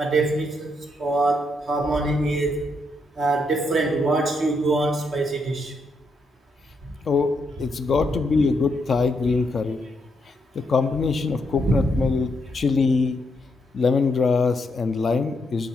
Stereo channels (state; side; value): normal; both; correlation 0.78